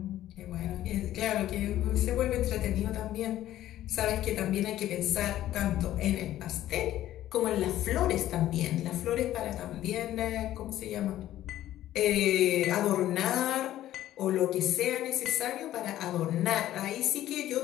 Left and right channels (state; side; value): quieter; right; 13.4 dB